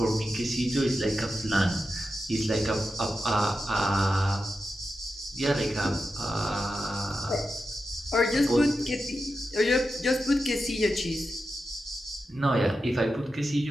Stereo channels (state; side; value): normal; both; correlation 0.89